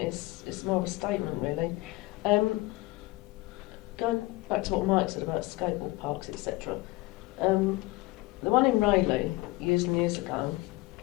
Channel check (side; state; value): right; quieter; 20.6 dB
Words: more of a statement, really. Going back to what Mike said about skateboard parks, etc. The one in Rayleigh, years and years ago,